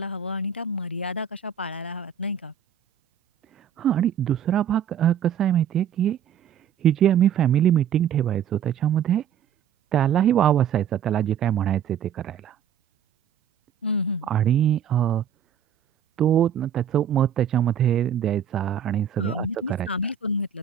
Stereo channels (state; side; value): quieter; left; 8.6 dB